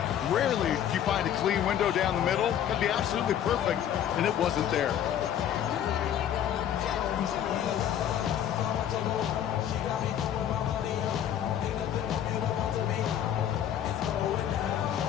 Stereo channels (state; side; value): quieter; right; 10.1 dB